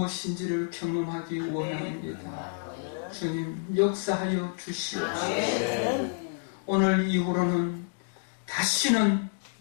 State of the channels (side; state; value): right; silent; digital silence